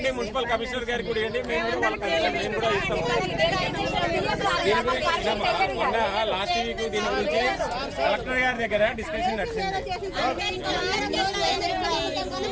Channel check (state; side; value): identical; both; correlation 1.00